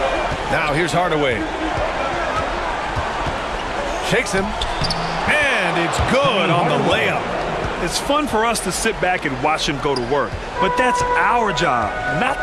Now here's Hardaway. Shakes him, and it's good on the layup. It's fun for us to sit back and watch him go to work, but that's our job, not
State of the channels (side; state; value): both; identical; correlation 1.00